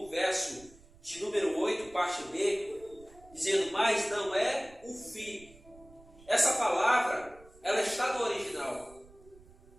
verso de número 8, parte B, dizendo, mas não é o fim. Essa palavra, ela está no original,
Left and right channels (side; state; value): right; noise; rumble, 24 dB below the sound